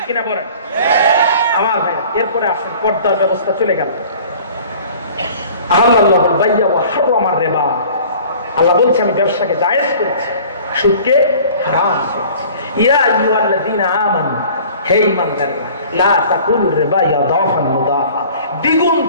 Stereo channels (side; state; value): both; inverted; correlation -0.48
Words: কিনা বলেন আমার ভাই? এরপরে আসেন, পর্দার ব্যবস্থা চলে গেল। আহাল্লাহুল বাইয়া ওয়া হারামার রিবা, আল্লাহ বলছে আমি ব্যবসাকে জায়েজ করছি, সুদকে হারাম করছি। ইয়া আইয়ুহাল্লাযীনা আমানু, হে ঈমানদাররা, লা তাকুলুর রিবা ইয়াদাফান মুদাফা, দ্বিগুণ